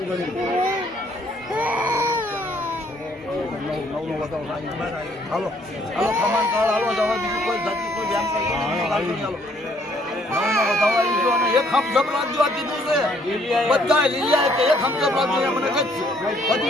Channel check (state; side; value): normal; both; correlation 0.65